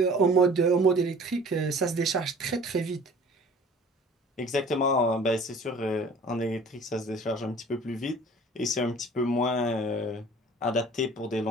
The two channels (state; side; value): normal; both; correlation 0.48